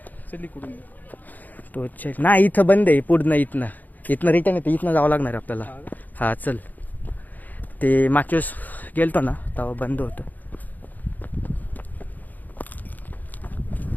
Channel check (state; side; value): late; right; 0.083 ms